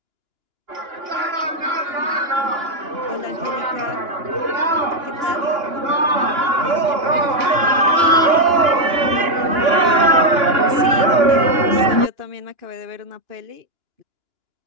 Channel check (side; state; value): left; late; 2.9 ms